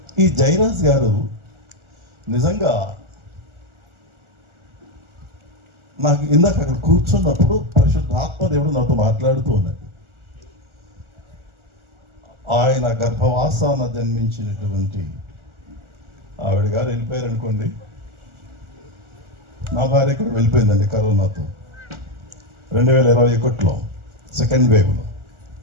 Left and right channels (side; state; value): left; late; 1.4 ms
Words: ఈ జయరాజ్ గారు నిజంగా నాకు ఇందాక అక్కడ కూర్చున్నప్పుడు పరిశుద్ధ ఆత్మదేవుడు నాతో మాట్లాడుతూ ఉన్నాడు. ఆయన గర్భవాసాన జన్మించినటువంటి ఆవిడ గారు వెళ్ళిపోయారు అనుకోండి. నా భార్య ఇక్కడ వెళ్ళిపోయిందండి కరోనాతో 2021లో సెకండ్ వేవ్లో.